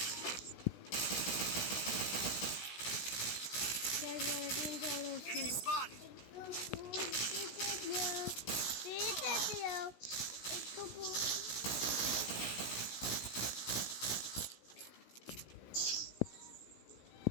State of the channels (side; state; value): right; late; 16 ms